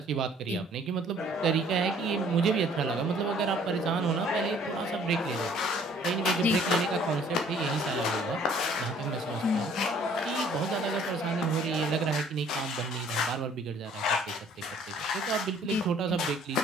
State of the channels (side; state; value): both; normal; correlation 0.57